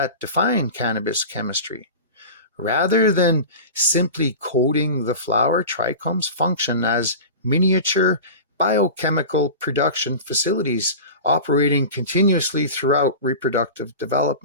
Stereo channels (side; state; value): both; inverted; correlation -0.31